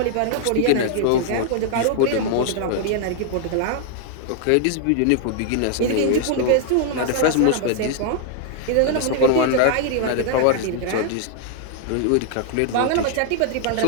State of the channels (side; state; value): both; different; correlation 0.00